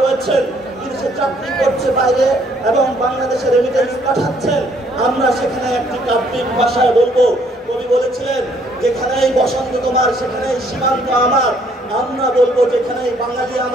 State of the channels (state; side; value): normal; both; correlation 0.65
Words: রয়েছেন, বিদেশে চাকরি করছে বাইরে এবং বাংলাদেশে রেমিটেন্স পাঠাচ্ছেন, আমরা সেখানে একটি কাব্যিক ভাষায় বলবো। কবি বলেছিলেন, যেখানেই বসন্ত তোমার সেখানেই সীমান্ত আমার। আমরা বলবো, যেখানেই বাঙালি